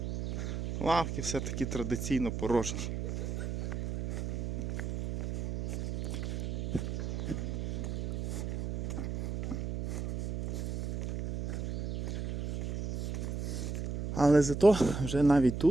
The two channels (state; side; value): noise; right; hum, 3 dB below the sound